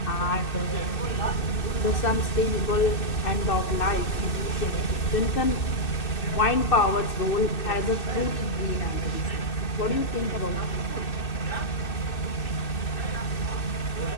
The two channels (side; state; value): right; late; 2.6 ms